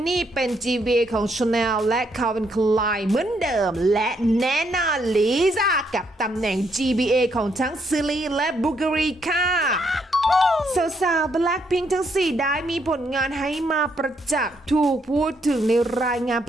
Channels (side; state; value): both; normal; correlation 0.74